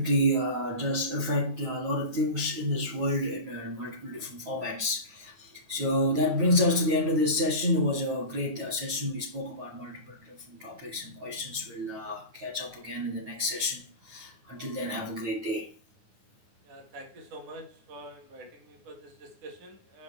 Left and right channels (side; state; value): left; late; 9.2 ms